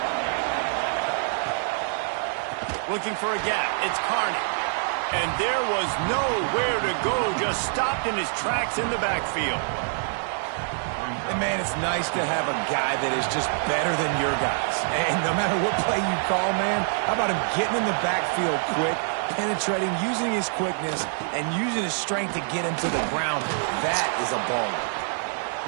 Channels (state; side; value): silent; left; digital silence